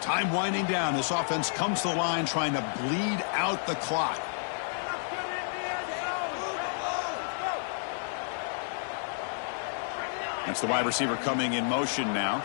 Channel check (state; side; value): silent; right; 58 dB below the other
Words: Time winding down. This offense comes to the line trying to bleed out the clock. That's the wide receiver coming in motion now.